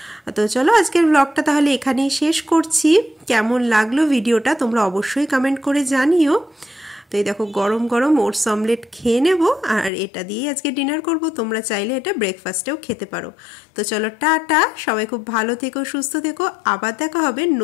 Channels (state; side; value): drops out; right; at 9.9 s